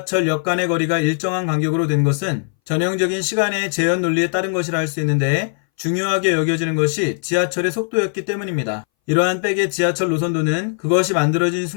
간의 거리가 일정한 간격으로 된 것은 전형적인 시간의 재현 논리에 따른 것이라 할 수 있는데, 중요하게 여겨지는 것이 지하철의 속도였기 때문입니다. 이러한 백의 지하철 노선도는 그것이 만들어진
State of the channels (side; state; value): right; silent; 62 dB below the other